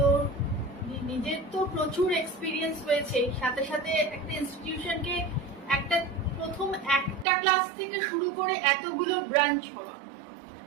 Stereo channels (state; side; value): drops out; left; at 7.2 s